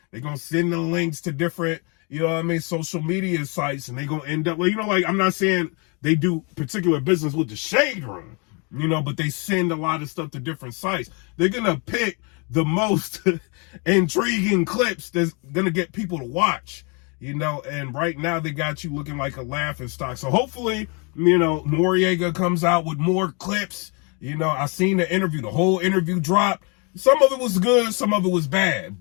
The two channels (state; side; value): quieter; right; 33.5 dB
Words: They going to send the links to different, social media sites, and they going to end up, I'm not saying they do particular business with the Shade Room, but they send a lot of stuff to different sites. They're going to pick the most intriguing clips that's gonna get people to watch, and right now they got you looking like a laughing stock. So hopefully, Noriega comes out with more clips. I seen the interview, the whole interview dropped. Some of it was good, some of it was bad.